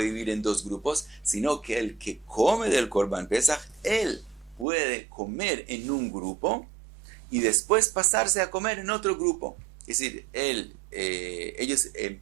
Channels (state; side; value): drops out; left; at 4.7 s